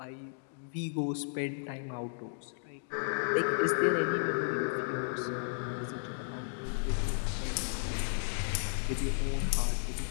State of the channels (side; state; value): right; silent; digital silence